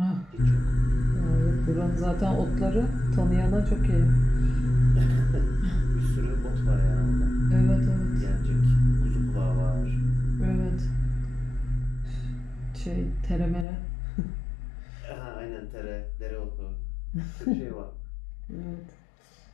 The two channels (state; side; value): drops out; right; at 13.7 s